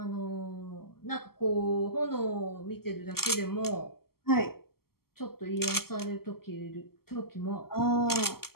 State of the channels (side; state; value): right; late; 0.94 ms